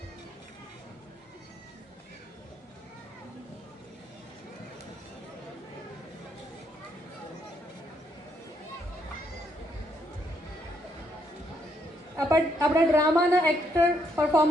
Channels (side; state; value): both; normal; correlation 0.74